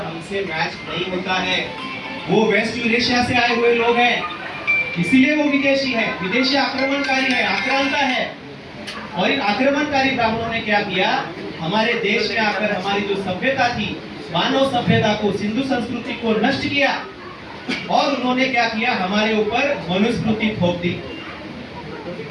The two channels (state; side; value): identical; both; correlation 1.00